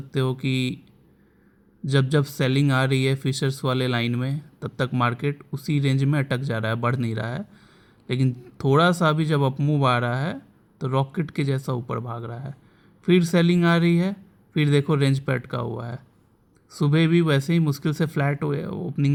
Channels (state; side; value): identical; both; correlation 1.00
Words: हो कि जब जब सेलिंग आ रही है फिशर्स वाले लाइन में, तब तक मार्केट उसी रेंज में अटक जा रहा है, बढ़ नहीं रहा है। लेकिन थोड़ा सा भी जब अपमूव आ रहा है तो रॉकेट के जैसा ऊपर भाग रहा है। फिर सेलिंग आ रही है, फिर देखो रेंज पे अटका हुआ है। सुबह भी वैसे ही मुश्किल से फ्लैट